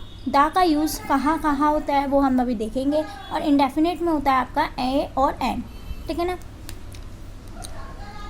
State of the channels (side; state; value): both; identical; correlation 1.00